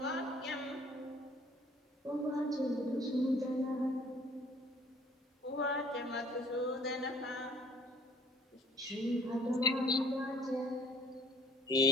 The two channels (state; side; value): normal; both; correlation 0.56